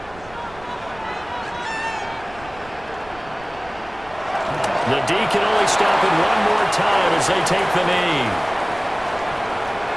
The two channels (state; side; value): noise; right; rumble, 21 dB below the sound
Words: The D can only stop it one more time as they take the knee.